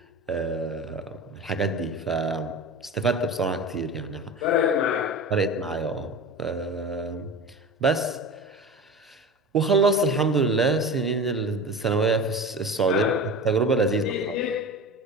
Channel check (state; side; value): normal; both; correlation 0.32